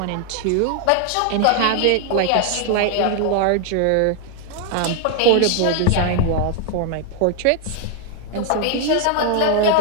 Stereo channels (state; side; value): different; both; correlation 0.00